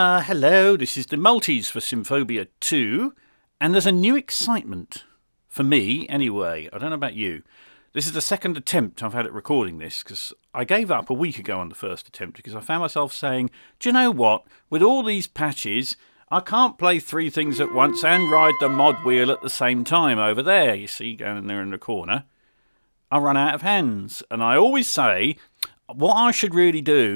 this is the Multis for Symphobia 2, and there's a new excitement. For me, anyway. I don't know about you. This is the second attempt I've had at recording this, because I gave up a week ago on the first attempt, because I found myself saying, do you know what? With all these patches, I can't play three things at once and ride the mod wheel at the same time over there, you see, going there in the corner. I run out of hands, and I always say, what I should really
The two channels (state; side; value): inverted; both; correlation -1.00